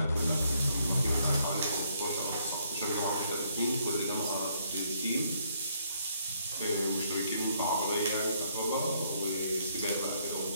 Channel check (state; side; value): inverted; both; correlation -0.69